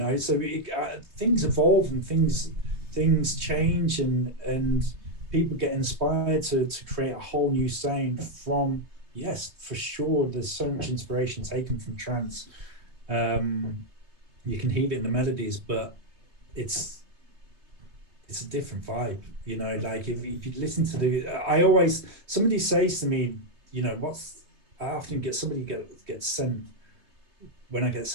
So things evolve and things change, and people get inspired to create a whole new sound from. Yes, for sure. There's so much inspiration taken from trance. You can hear it in the melodies, but it's a different vibe, you know. Like if you listen to somebody says to me, you know, I often get sent, when I get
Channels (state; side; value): late; left; 3.3 ms